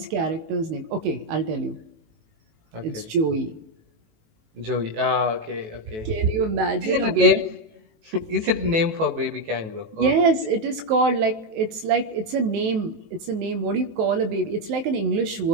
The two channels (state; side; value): late; left; 18 ms